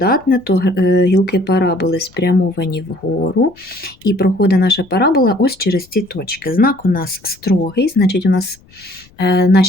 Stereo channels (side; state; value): left; noise; rumble, 29 dB below the sound